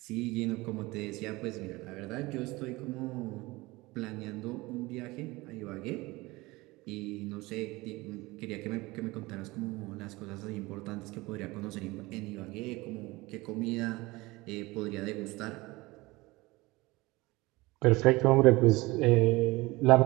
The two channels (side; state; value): left; quieter; 21.6 dB